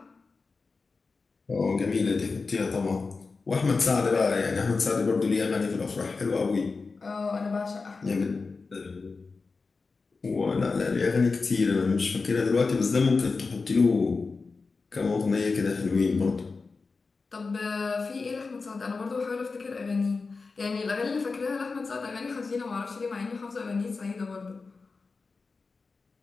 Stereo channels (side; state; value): right; quieter; 4.3 dB